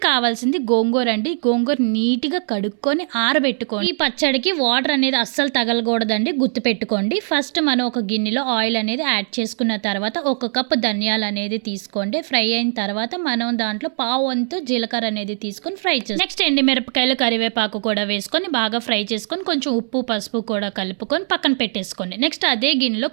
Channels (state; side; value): silent; left; 64 dB below the other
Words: కావాల్సింది గోంగూర అండి. గోంగూర నీట్గా కడుక్కొని ఆరబెట్టుకోండి. ఈ పచ్చడికి వాటర్ అనేది అస్సలు తగలకూడదండి, గుర్తుపెట్టుకోండి. ఫస్ట్ మనం ఒక గిన్నెలో ఆయిల్ అనేది యాడ్ చేసుకున్న తర్వాత ఒక కప్పు ధనియాలు అనేది తీసుకోండి. ఫ్రై అయిన తర్వాత మనం దాంట్లో పావు వంతు జీలకర్ర అనేది తీసుకొని ఫ్రై చేస్తాం. నెక్స్ట్ ఎండుమిరపకాయలు, కరివేపాకు కూడా వేసుకొని బాగా ఫ్రై చేసుకొని కొంచెం ఉప్పు పసుపు కూడా కలుపుకొని పక్కన పెట్టేసుకోండి. నెక్స్ట్ అదే గిన్నెలో